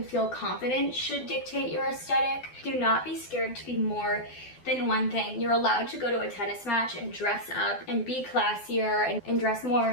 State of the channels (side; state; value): right; late; 12 ms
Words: feel confident should dictate your aesthetic. Do not be scared to be more than one thing. You're allowed to go to a tennis match and dress up and be classier and dress